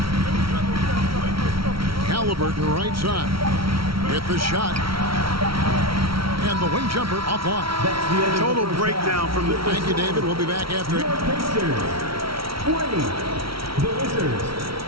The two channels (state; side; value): late; left; 0.75 ms